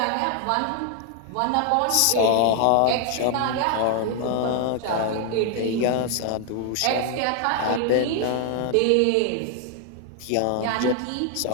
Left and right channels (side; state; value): both; different; correlation 0.00